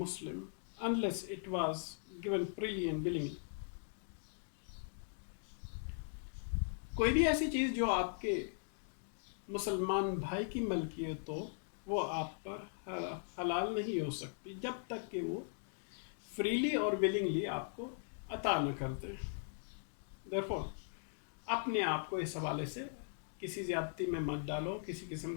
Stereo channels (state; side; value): silent; right; digital silence